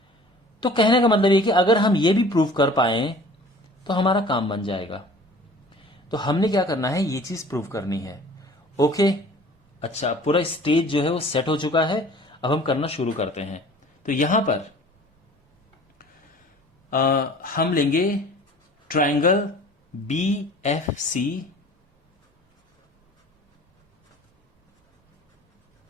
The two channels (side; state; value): both; normal; correlation 0.47